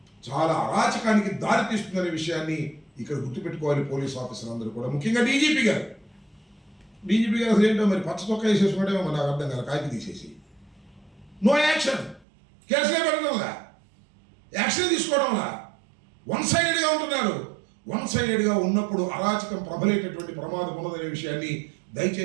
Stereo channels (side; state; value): left; drops out; at 12.2 s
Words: చాలా అరాచకానికి దారితీస్తుందనే విషయాన్ని ఇక్కడ గుర్తుపెట్టుకోవాలి పోలీస్ ఆఫీసర్ అందరూ కూడా, ముఖ్యంగా డీజీపీ గారు అసలు ఏంటో మరి పచ్చ చొక్కా వేసేసుకుంటేమో మరి నాకు అర్థం కాదు, కాకి తీసేసి నో యాక్షన్, కేసులే పెట్టడంలా, యాక్షన్ తీసుకోవడంలా, వన్ సైడెడ్గా ఉంటున్నారు. వన్ సైడెడ్గా ఉన్నప్పుడు అరాచకం ప్రబలేటటువంటి ప్రమాదం ఉన్నదనే విషయాన్ని